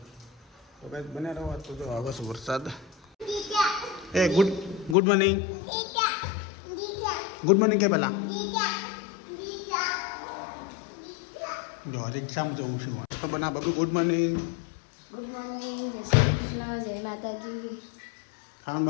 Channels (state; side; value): drops out; right; at 5.0 s